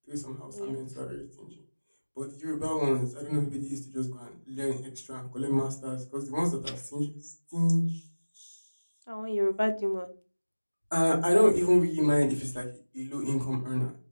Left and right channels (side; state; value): both; inverted; correlation -1.00